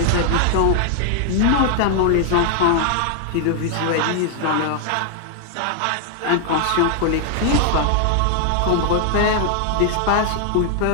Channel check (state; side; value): different; both; correlation 0.00